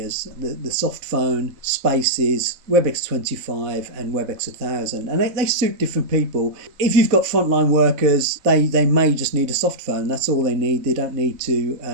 the soft phone, Spaces, Webex 25 and Webex 1000. And they suit different people. If you've got frontline workers, they may just need a soft phone. That's all they need. They don't need to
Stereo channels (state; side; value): late; left; 4.0 ms